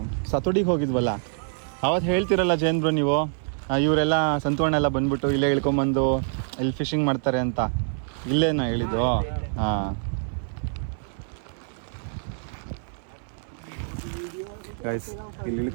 ಸತೋಡಿಗೆ ಹೋಗಿದ್ವಲ್ಲ, ಅವತ್ತು ಹೇಳ್ತಿರಲ್ಲ ಜೈನ್ ಬ್ರೋ ನೀವು, ಇವರೆಲ್ಲ ಸಂತೋಣ ಎಲ್ಲ ಬಂದ್ಬಿಟ್ಟು ಇಲ್ಲೇ ಇಳ್ಕೊಂಬಂದು ಇಲ್ಲಿ ಫಿಶಿಂಗ್ ಮಾಡ್ತಾರೆ ಅಂತ, ಇಲ್ಲೇನೋ ಹೇಳಿದ್ದು. ಹಾಂ ಗೈಸ್, ಇಲ್ಲಿ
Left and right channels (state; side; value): silent; left; 61 dB below the other